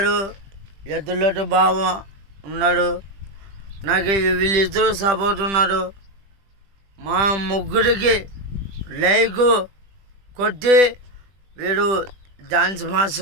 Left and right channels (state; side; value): late; left; 20 ms